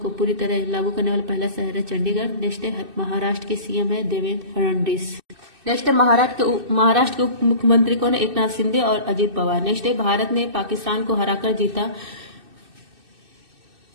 पूरी तरह लागू करने वाला पहला शहर है चंडीगढ़। नेक्स्ट है महाराष्ट्र के सीएम है देवेंद्र फडणवीस। नेक्स्ट है महाराष्ट्र के उप मुख्यमंत्री कौन है? एकनाथ शिंदे और अजित पवार। नेक्स्ट है भारत ने पाकिस्तान को हराकर जीता।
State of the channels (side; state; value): left; late; 2.6 ms